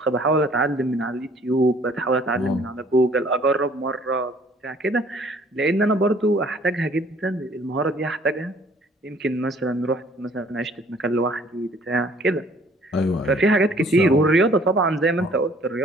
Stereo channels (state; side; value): normal; both; correlation 0.58